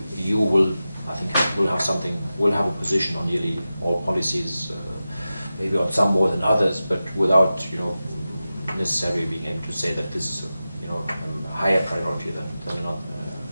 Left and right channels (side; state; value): both; inverted; correlation -0.93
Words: EU will, I think, will have a position on nearly all policies, maybe on some more than others, but without necessarily being able to say that this is a higher priority than